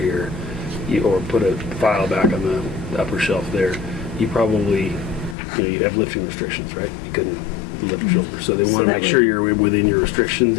or put a file back on the upper shelf there, you probably you have lifting restrictions, right? You couldn't lift your shoulder, so they want to that make sure would- you're within your restrictions.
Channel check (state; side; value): drops out; right; at 5.4 s